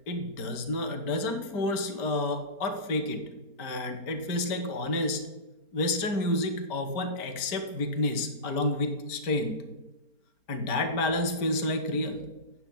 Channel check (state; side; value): late; right; 4.4 ms